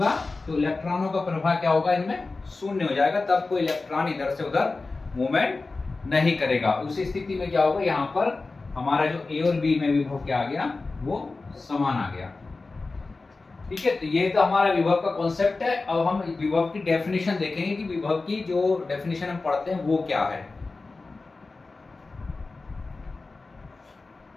तो इलेक्ट्रॉनों का प्रवाह क्या होगा, इनमें शून्य हो जाएगा। तब कोई इलेक्ट्रॉन इधर से उधर मूवमेंट नहीं करेगा। उस स्थिति में क्या होगा, यहाँ पर हमारा जो ए और बी में विभव क्या आ गया, वो समान आ गया। ठीक है, तो ये तो हमारा विभव का कॉन्सेप्ट है। अब हम विभव की डेफिनेशन देखेंगे कि विभव की जो डेफिनेशन हम पढ़ते हैं वो क्या है।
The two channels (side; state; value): right; quieter; 3.7 dB